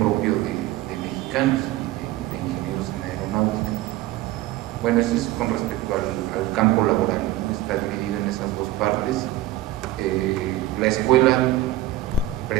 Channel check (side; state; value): left; quieter; 14.1 dB